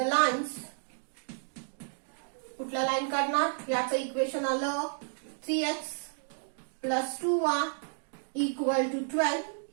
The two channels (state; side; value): silent; left; digital silence